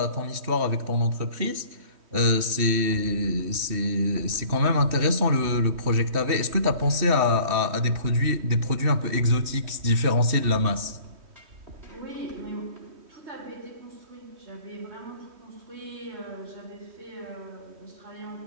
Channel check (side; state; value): left; late; 3.1 ms